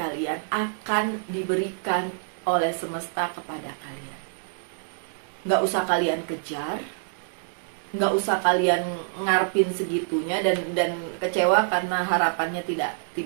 akan diberikan oleh semesta kepada kalian. Nggak usah kalian kejar, nggak usah kalian ngarepin segitunya dan kecewa karena harapannya tidak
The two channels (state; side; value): silent; left; digital silence